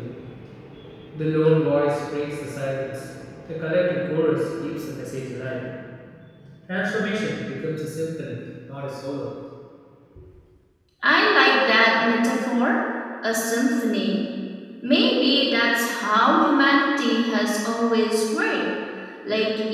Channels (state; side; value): identical; both; correlation 1.00